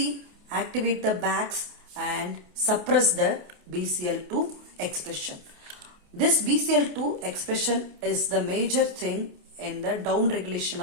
activate the Bax and suppress the BCL2 expression. This BCL2 expression is the major thing in the down regulation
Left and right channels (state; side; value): late; left; 28 ms